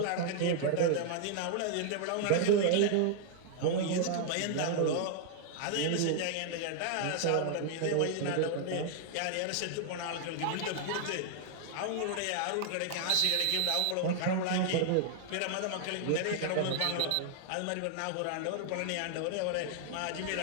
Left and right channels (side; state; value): both; different; correlation 0.00